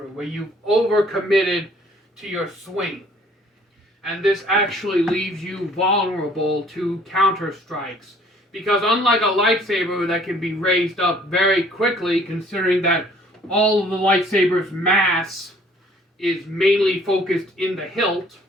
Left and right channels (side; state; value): both; normal; correlation 0.57